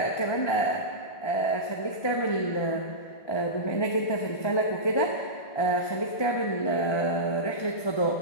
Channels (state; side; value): late; right; 1.3 ms